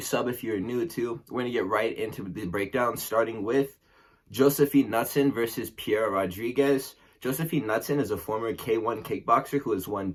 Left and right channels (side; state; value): both; identical; correlation 1.00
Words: sub if you're new too. We're going to get right into the breakdown, starting with Josefine Knuttson versus Piera Rodriguez. Josefine Knuttson is a former K1 kickboxer who has won